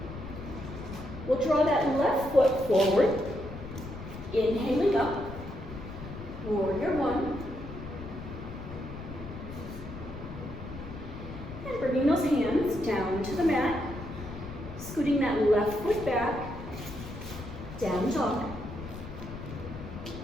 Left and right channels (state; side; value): noise; left; rumble, 11 dB below the sound